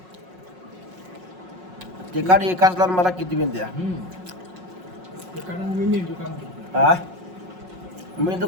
तिखट एकाच लावून मला किती बिन द्या. हा मी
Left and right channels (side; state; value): left; late; 5.5 ms